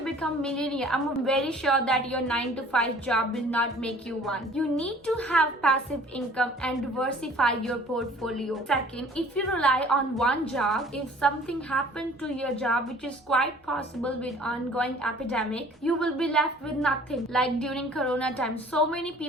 become millionaire, I'm very sure that your 9 to 5 job will not make you one. You need to have passive income and diversify your portfolio. Second, if you rely on one job, if something happened to your job, which is quite possible with ongoing epidemic, you will be left with nothing. Like during Corona time, so many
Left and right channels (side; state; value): both; normal; correlation 0.51